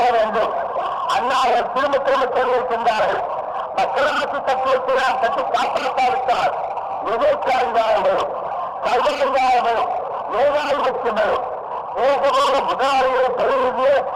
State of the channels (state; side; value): identical; both; correlation 1.00